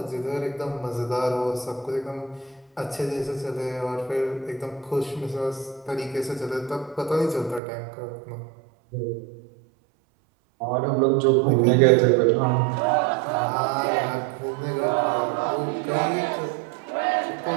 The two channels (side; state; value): left; drops out; at 7.6 s